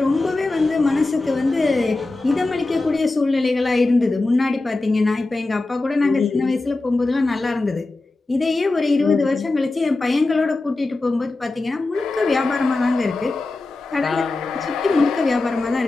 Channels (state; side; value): quieter; right; 3.2 dB